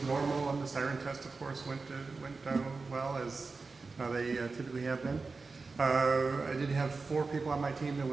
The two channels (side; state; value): left; quieter; 4.1 dB